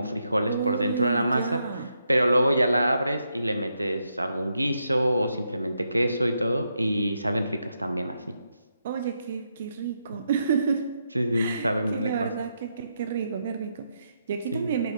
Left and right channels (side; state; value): both; inverted; correlation -0.81